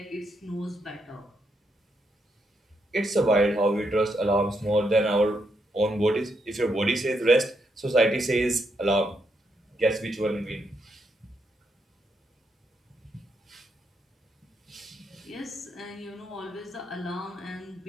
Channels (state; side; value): normal; both; correlation 0.79